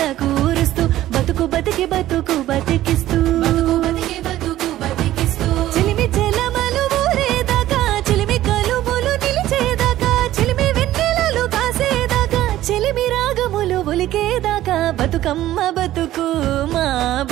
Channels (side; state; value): left; quieter; 14.2 dB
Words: కూరుస్తూ బతుకు బతికి బతుకు బతికిస్తూ బతుకు బతికి బతుకు బతికిస్తూ చిలిమి చెలమలు ఊరేదాకా చిలిమి కలుములు నిలిచేదాకా చిలిమి వెన్నెలలు కాసేదాకా చిలిమి రాగములు ఒలికేదాకా బతుకమ్మ బతుకు మా